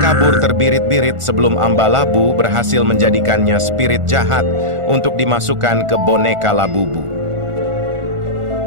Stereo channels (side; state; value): left; late; 1.4 ms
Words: terbirit-birit sebelum Ambalabu berhasil menjadikannya spirit jahat untuk dimasukkan ke boneka Labubu.